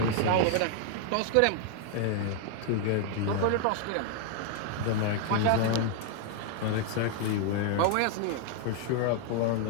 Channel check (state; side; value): different; both; correlation 0.00